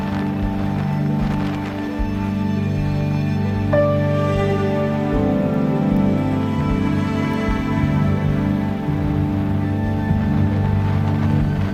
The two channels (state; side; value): identical; both; correlation 1.00